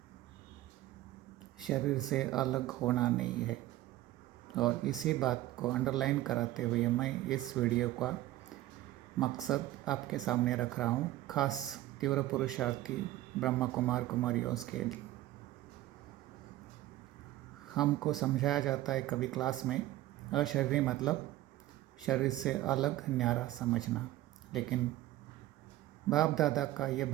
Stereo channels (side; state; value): left; quieter; 15.6 dB